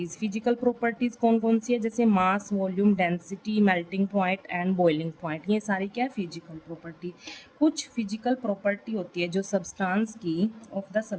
कौन कौन सी है, जैसे mass, volume, density, melting point and boiling point, ये सारी क्या है, फिजिकल प्रॉपर्टी। कुछ फिजिकल प्रॉपर्टी होती है जो सब्सटेंस की of the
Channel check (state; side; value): identical; both; correlation 1.00